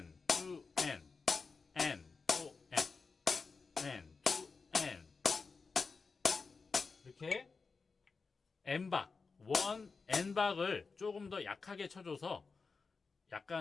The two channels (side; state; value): right; quieter; 4.6 dB